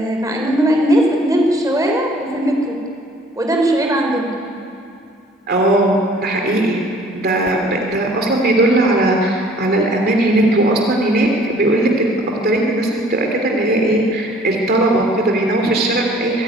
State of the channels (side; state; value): both; normal; correlation 0.55